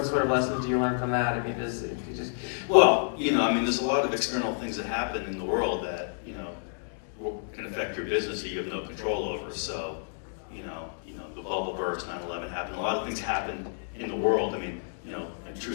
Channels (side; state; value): right; silent; digital silence